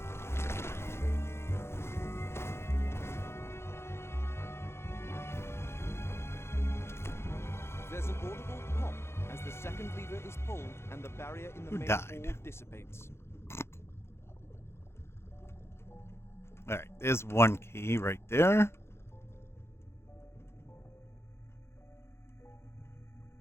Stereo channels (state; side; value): late; right; 0.12 ms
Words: There's an audible pop as the second lever is pulled and the barrier in the Who main died? hall dissipates. Alright, there's one key right there.